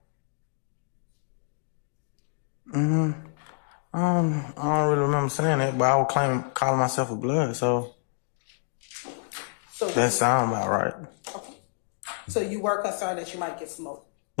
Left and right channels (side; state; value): right; silent; digital silence